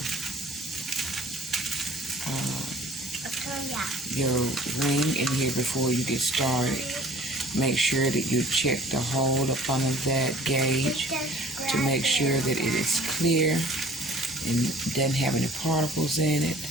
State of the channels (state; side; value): normal; both; correlation 0.50